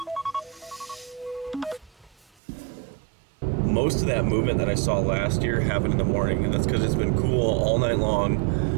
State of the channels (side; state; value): left; drops out; at 2.3 s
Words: Most of that movement that I saw last year happened in the morning, and that's because it's been cool all night long.